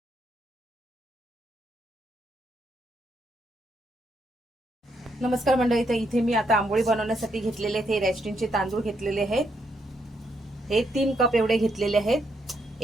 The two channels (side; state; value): both; normal; correlation 0.76